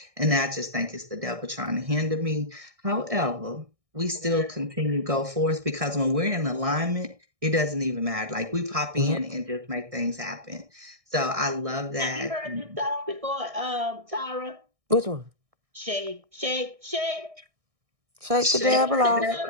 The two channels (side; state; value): left; late; 1.6 ms